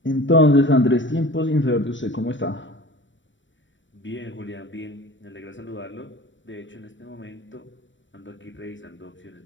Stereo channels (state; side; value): late; right; 0.55 ms